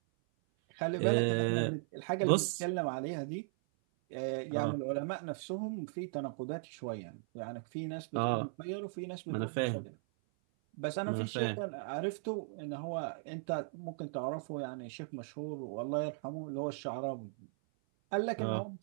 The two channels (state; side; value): silent; left; 53 dB below the other